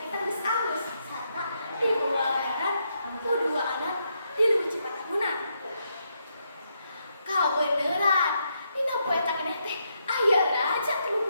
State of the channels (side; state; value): both; inverted; correlation -0.79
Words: geus alus, sarta dibawa aran ku dua anak di leuwih Cipatahunan. Kabeneran, dina poe tadi teh aya raja